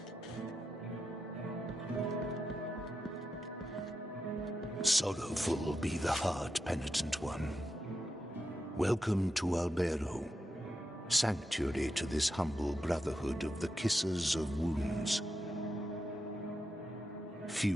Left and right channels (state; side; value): normal; both; correlation 0.87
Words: Sorrowful be the heart, penitent one. Welcome to Albero, sanctuary to this humble brotherhood of the Kissers of Wounds.